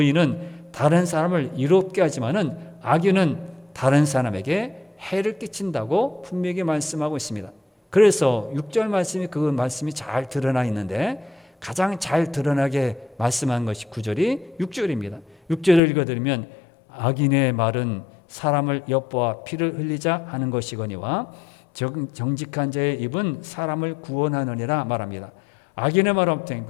다른 사람을 이롭게 하지만은 악인은 다른 사람에게 해를 끼친다고 분명히 말씀하고 있습니다. 그래서 6절 말씀이 그 말씀이 잘 드러나 있는데 가장 잘 드러나게 말씀한 것이 9절이 6절입니다. 6절을 읽어드리면 악인의 말은 사람을 엿보아 피를 흘리자 하는 것이거니와 정직한 자의 입은 사람을 구원하느니라 말합니다. 악인의 말은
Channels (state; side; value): drops out; right; at 15.8 s